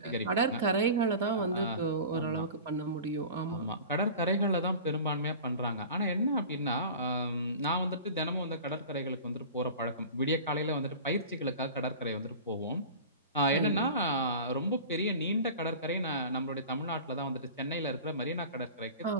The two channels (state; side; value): inverted; both; correlation -0.37